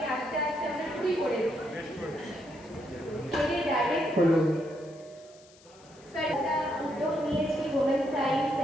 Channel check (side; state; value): left; noise; hiss, 26 dB below the sound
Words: আসতে আসতে আমরা ফ্রি করে দিই। স্যার একটা উদ্যোগ নিয়েছি ওমেন সায়েন্স